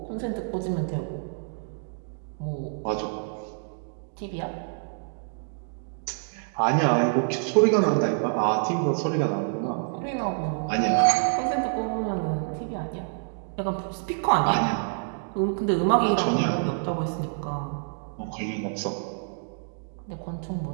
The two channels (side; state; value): left; silent; 60 dB below the other